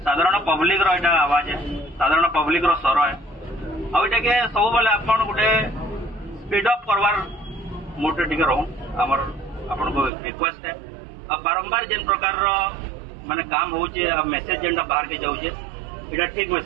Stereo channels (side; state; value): left; drops out; at 10.1 s